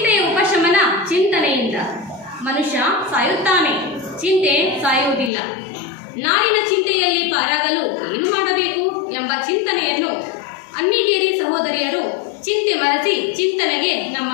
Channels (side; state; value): right; drops out; at 5.3 s